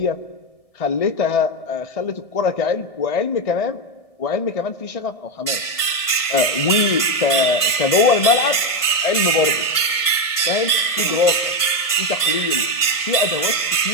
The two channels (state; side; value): late; right; 1.6 ms